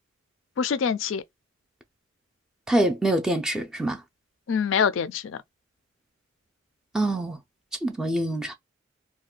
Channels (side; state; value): both; normal; correlation 0.50